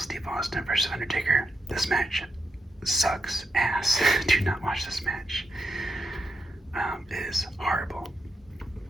Austin versus Undertaker. This match sucks ass. Do not watch this match. It is horrible.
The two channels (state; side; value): normal; both; correlation 0.84